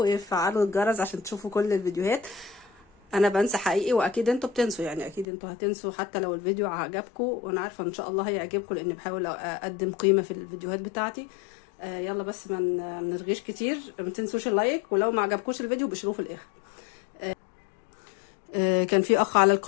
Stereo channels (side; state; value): right; drops out; at 5.2 s